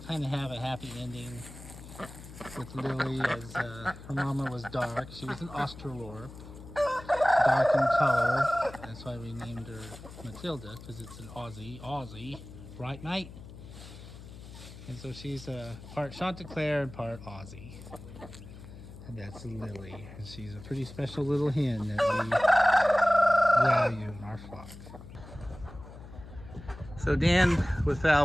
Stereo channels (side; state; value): left; noise; hum, 15 dB below the sound